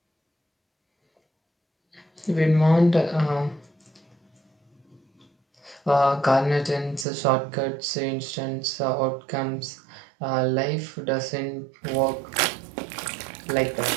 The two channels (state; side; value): drops out; left; at 7.1 s